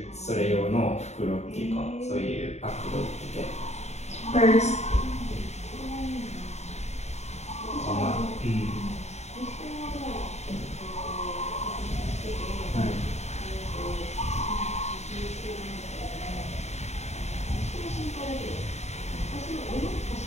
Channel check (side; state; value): right; late; 0.32 ms